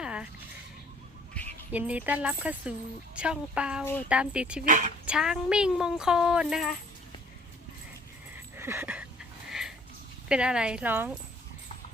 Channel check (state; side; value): normal; both; correlation 0.56